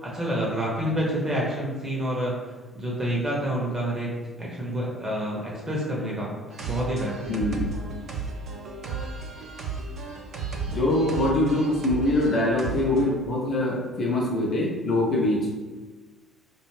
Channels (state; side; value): normal; both; correlation 0.46